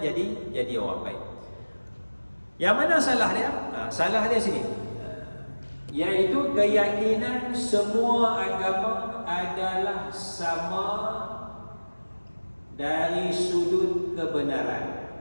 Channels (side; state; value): both; inverted; correlation -1.00